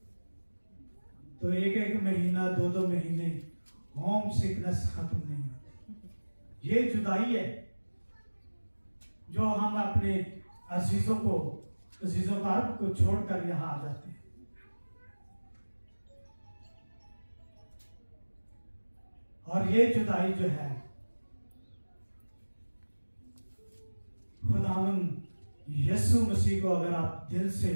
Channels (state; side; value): inverted; both; correlation -1.00